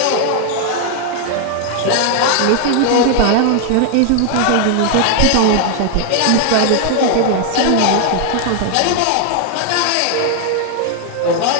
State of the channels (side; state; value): both; different; correlation 0.00